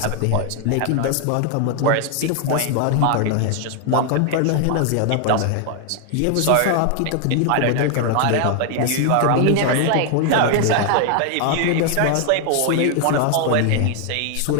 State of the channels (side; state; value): both; different; correlation 0.00